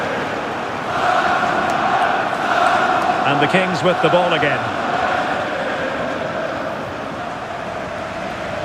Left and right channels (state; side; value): identical; both; correlation 1.00